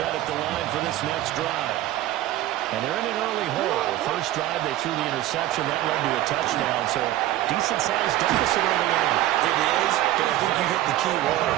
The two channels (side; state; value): left; quieter; 14.5 dB